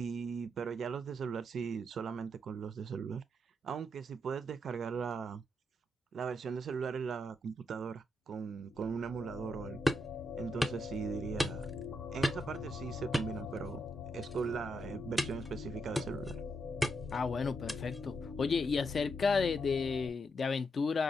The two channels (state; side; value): normal; both; correlation 0.81